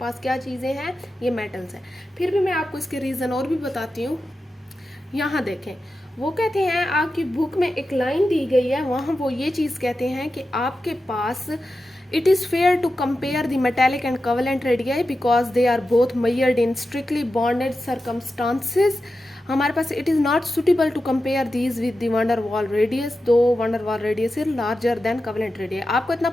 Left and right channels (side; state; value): both; normal; correlation 0.91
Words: क्या चीज़ें हैं, ये मेटल्स हैं। फिर भी मैं आपको इसके रीज़न और भी बताती हूँ। यहाँ देखें, वो कहते हैं आपकी बुक में एक लाइन दी गई है, वहाँ वो ये चीज़ कहते हैं कि आपके पास it is fair to compare the metallic and covalent radii because they are both measured in strictly bonded circumstances. हमारे पास it is not suitable to compare these with the van der Waals radius, though van der Waals radius is larger than covalent radii. आपको इतना